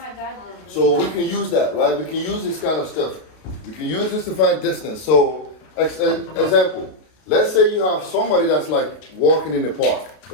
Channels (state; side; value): late; right; 32 ms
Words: So we can use that, right? We can use this kind of stuff. We can use this to find distance. So, example, let's say you have somebody that's like walking in the park,